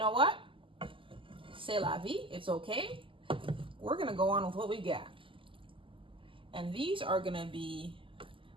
what? C'est la vie, it's okay. We're gonna go on with what we got. And these are gonna be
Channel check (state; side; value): late; left; 0.25 ms